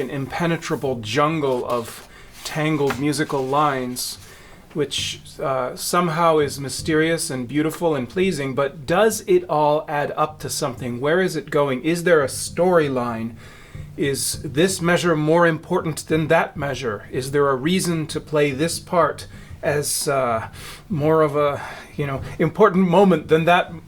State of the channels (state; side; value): identical; both; correlation 1.00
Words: impenetrable jungle of tangled musical lines, which somehow is mysterious and beautiful and pleasing, but does it all add up to something? Where is it going? Is there a storyline? Is this measure more important than that measure? Is there a reason to play this part as more of a important moment than